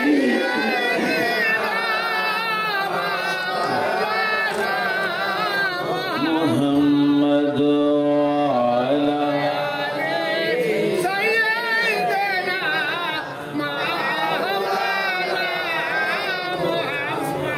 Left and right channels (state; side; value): identical; both; correlation 1.00